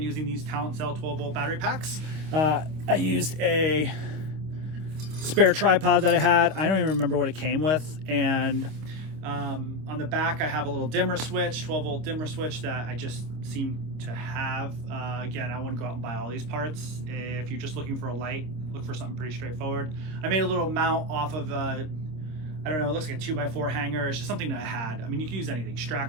using these Talent Cell 12 volt battery packs. I used a spare tripod that I had. I don't even remember what it came with. And on the back, I have a little dimmer switch, 12 volt dimmer switch that I just seem to have. Again, I wouldn't go out and buy all these parts. If you're just looking for a light, look for something pretty straightforward. I made a little mount off of I don't know, it looks like a 2x4 hanger. It's just something that I had. I mean, you can use anything,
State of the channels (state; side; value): late; left; 26 ms